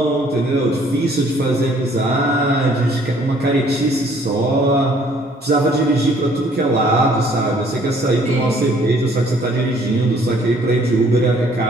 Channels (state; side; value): normal; both; correlation 0.60